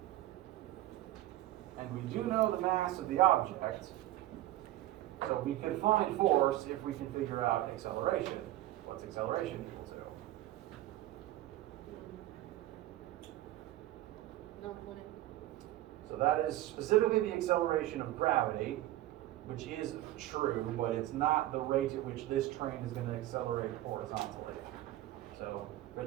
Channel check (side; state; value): left; quieter; 15.3 dB